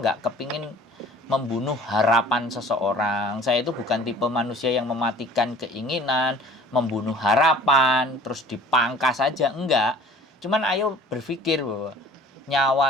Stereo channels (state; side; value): normal; both; correlation 0.48